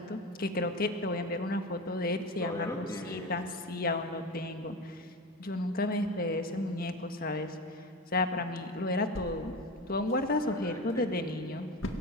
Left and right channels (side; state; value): both; normal; correlation 0.26